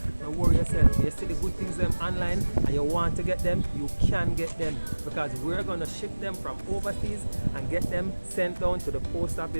don't worry yourself. You see the good things them online, and you want to get them, you can get them, because we're gonna ship them from overseas and get them sent down to the post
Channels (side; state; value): both; inverted; correlation -1.00